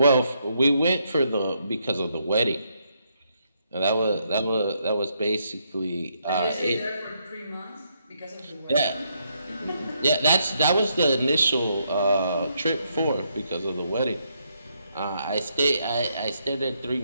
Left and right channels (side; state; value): both; inverted; correlation -0.76